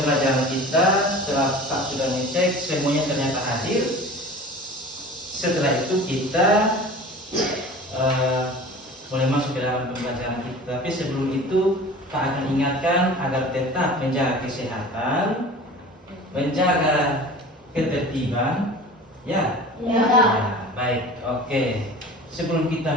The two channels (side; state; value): both; normal; correlation 0.39